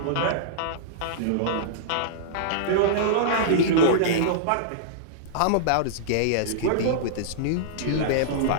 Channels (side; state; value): both; different; correlation -0.03